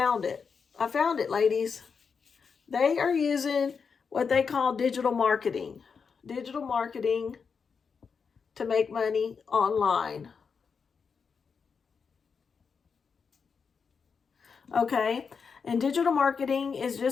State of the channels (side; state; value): right; quieter; 5.8 dB